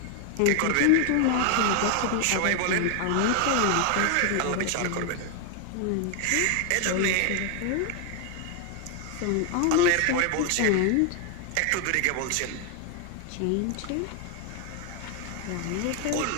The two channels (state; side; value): different; both; correlation 0.00